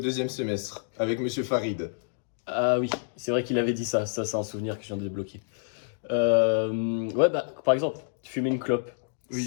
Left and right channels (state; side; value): silent; right; digital silence